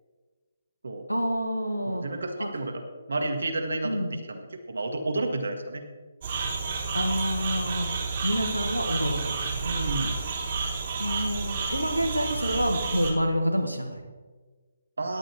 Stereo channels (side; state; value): both; inverted; correlation -0.87